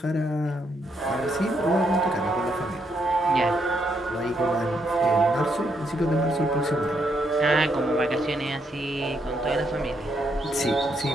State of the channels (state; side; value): normal; both; correlation 0.76